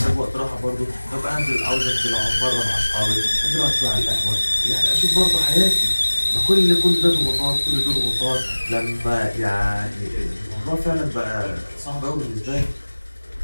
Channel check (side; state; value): both; inverted; correlation -1.00